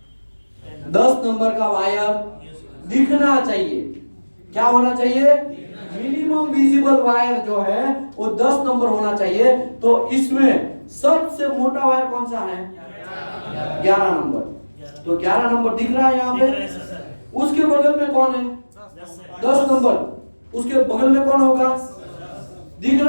10 नंबर का वायर दिखना चाहिए। क्या होना चाहिए? मिनिमम विजिबल वायर जो है वो 10 नंबर होना चाहिए। तो इसमें सबसे मोटा वायर कौन सा है? 11 नंबर। तो 11 नंबर दिख रहा है यहाँ पे। उसके बगल में कौन है? 10 नंबर। उसके बगल में कौन होगा? दिख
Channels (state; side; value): inverted; both; correlation -1.00